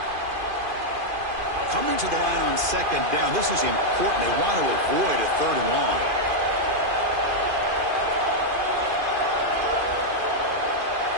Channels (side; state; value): left; late; 2.5 ms